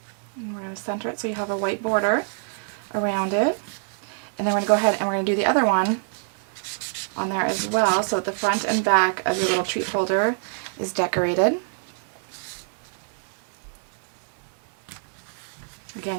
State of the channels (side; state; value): left; silent; 61 dB below the other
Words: And we're going to center it so you have a white border around it. And then we're going to go ahead and we're going to do the other one on there as well, so that the front and back of your little treat holder is decorated.